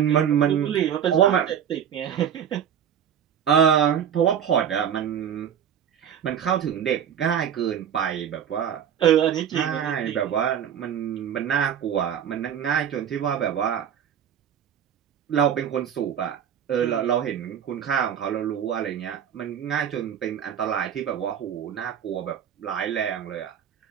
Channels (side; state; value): left; quieter; 8.9 dB